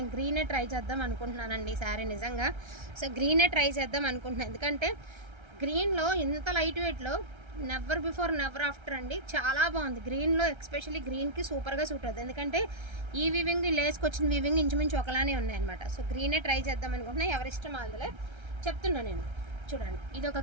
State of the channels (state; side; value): late; left; 1.3 ms